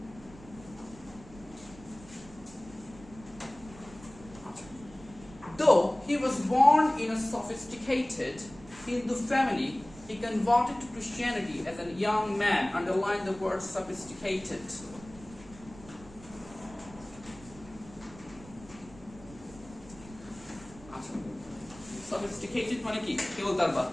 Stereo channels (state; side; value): noise; right; rumble, 19 dB below the sound